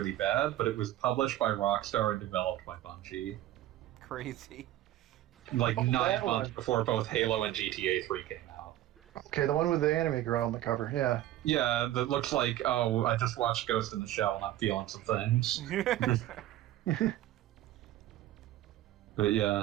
bad, but it was published by Rockstar and developed by Bungie. Crazy. Like 9 months before both Halo and GTA 3 came out. Okay, the one with the anime girl on the cover, yeah. Yeah, that looks like, oh, I just watched Ghost in the Shell and I'm feeling some things. But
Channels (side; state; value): left; quieter; 14.0 dB